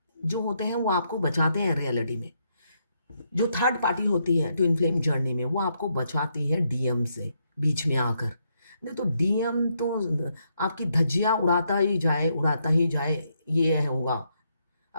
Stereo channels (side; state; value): both; inverted; correlation -0.77